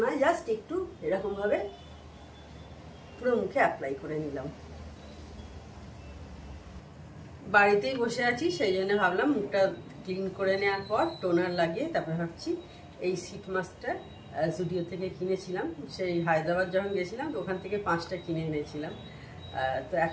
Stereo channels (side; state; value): both; identical; correlation 1.00